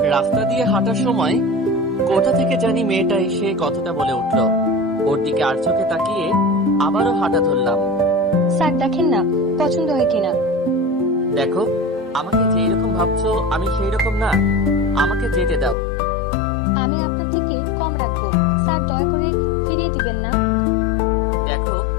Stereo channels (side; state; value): right; drops out; at 15.8 s